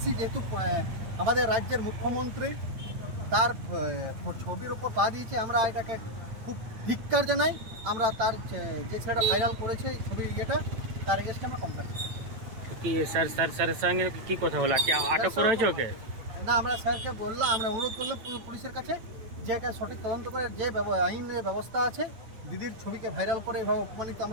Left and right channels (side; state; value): left; late; 9.0 ms